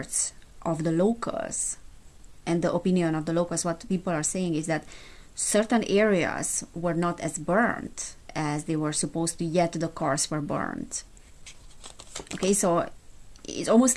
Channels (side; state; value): both; identical; correlation 1.00